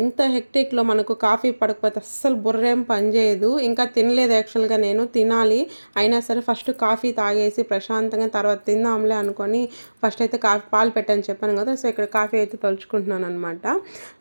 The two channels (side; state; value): both; inverted; correlation -1.00